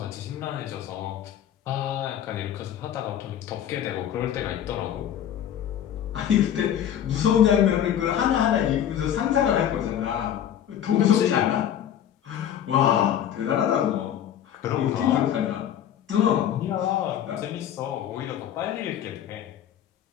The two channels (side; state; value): right; quieter; 10.1 dB